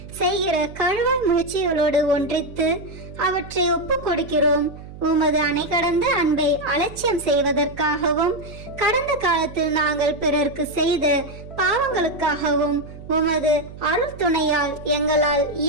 செய்கிற கழுவாய் முயற்சிகளோடு ஒன்றித்து அவற்றை ஒப்பு கொடுக்கிறோம். உமது அணை கடந்த அன்பை அலட்சியம் செய்வதற்காகவும் கடந்த காலத்தில் நாங்கள் பிறருக்கு செய்த பாவங்களுக்காகவும் உமது அருள் துணையால் எங்களால்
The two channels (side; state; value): right; noise; hum, 15 dB below the sound